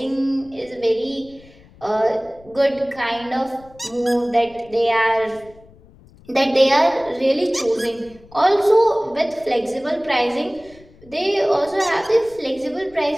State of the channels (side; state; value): left; noise; rumble, 25 dB below the sound